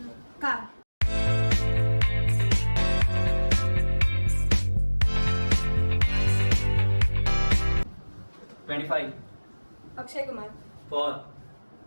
Car. $25. Akshay Kumar. 4.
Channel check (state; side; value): inverted; both; correlation -1.00